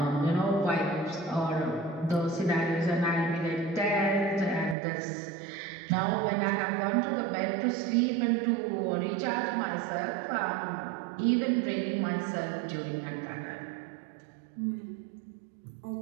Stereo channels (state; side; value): drops out; left; at 4.8 s